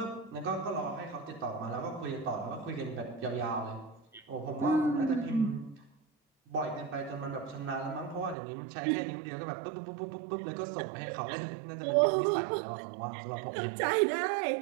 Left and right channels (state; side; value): drops out; left; at 8.3 s